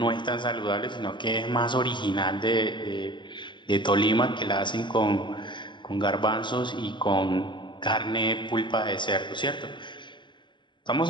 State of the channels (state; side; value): late; right; 0.23 ms